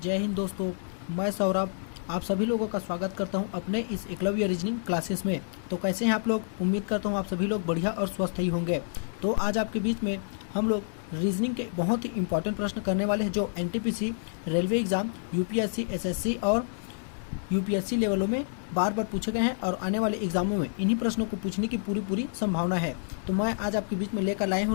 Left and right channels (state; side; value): silent; right; 59 dB below the other